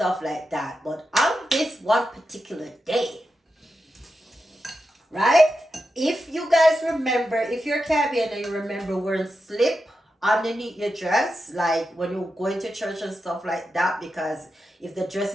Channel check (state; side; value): normal; both; correlation 0.89